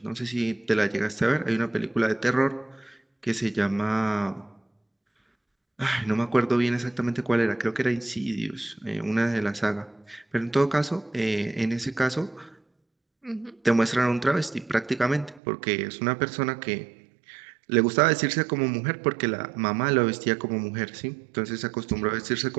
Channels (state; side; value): drops out; left; at 15.4 s